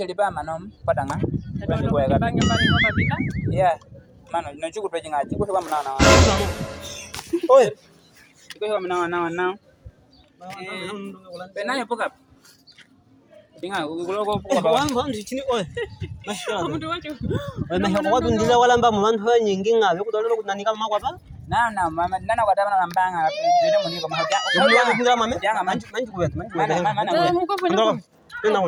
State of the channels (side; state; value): both; identical; correlation 1.00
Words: manom patanga. Ko ya kan. Iya. Mano no chuku peje ngaji ko ba mana. Oi. Ko ba mana. Penanya pokap. Tinggal gulo ko wan wan di sini oi masya Allah oi masya Allah dun dila wala mba man ho nyingi ngabe ko dolo nani kama kwa pa na mama nana kwa tabana nambanga dede muni ko mahakya ko ya ko ndira mame jangan man ko wet man mana